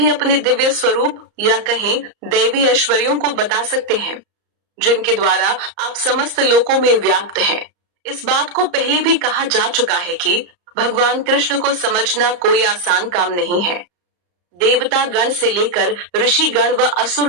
अपने दिव्य स्वरूप या कहें दैवी ऐश्वर्यों को बता सकते हैं, जिनके द्वारा आप समस्त लोकों में व्याप्त हैं। इस बात को पहले भी कहा जा चुका है कि भगवान कृष्ण को समझना कोई आसान काम नहीं है। देवता गण से लेकर ऋषि गण व असुर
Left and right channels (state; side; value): late; left; 34 ms